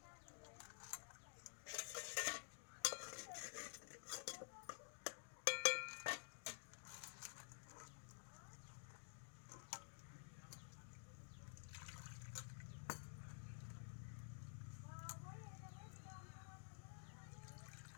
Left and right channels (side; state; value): right; silent; digital silence